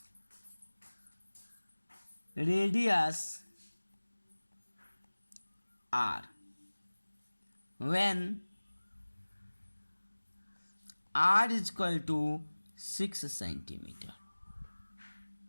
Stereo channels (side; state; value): both; inverted; correlation -1.00